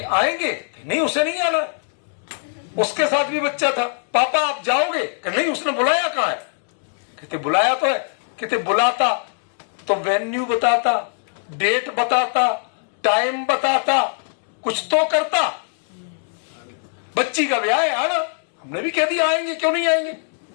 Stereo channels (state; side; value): silent; right; digital silence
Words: आएंगे? नहीं उसे नहीं आना। उसके साथ भी बच्चा था। पापा आप जाओगे? नहीं उसने बुलाया कहाँ है? कहते बुलाया तो है। कहते बुलाता तो वेन्यू बताता, डेट बताता, टाइम बताता, कुछ तो करता। बच्ची का ब्याह है आना, हमने भी कह दिया आएंगे, क्यों नहीं आएंगे।